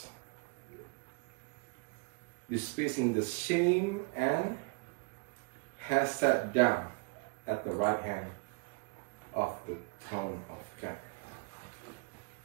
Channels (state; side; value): quieter; left; 32.0 dB